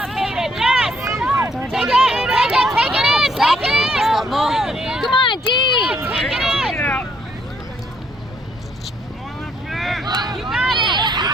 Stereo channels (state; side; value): normal; both; correlation 0.70